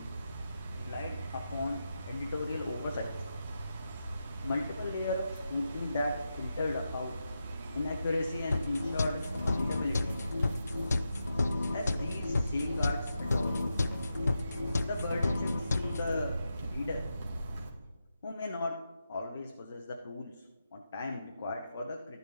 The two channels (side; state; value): both; inverted; correlation -0.88